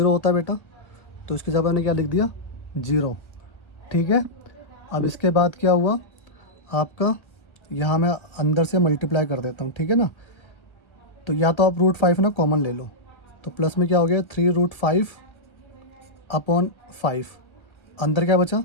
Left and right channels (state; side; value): late; right; 1.5 ms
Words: होता है बेटा, तो इसके जगह मैंने क्या लिख दिया 0, ठीक है। अब इसके बाद क्या हुआ आपका, यहाँ मैं अंदर से मल्टीप्लाई कर देता हूँ, ठीक है ना। तो या तो आप √5 ना कॉमन ले लो, तो प्लस में क्या हो गया 3√5/5, अंदर क्या बचा